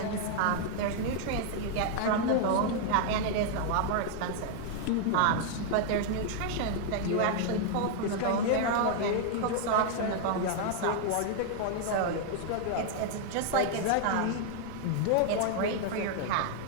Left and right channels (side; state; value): both; different; correlation 0.00